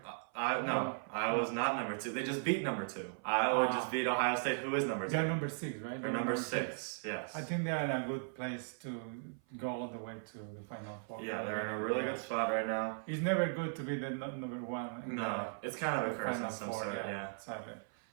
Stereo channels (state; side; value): silent; left; 53 dB below the other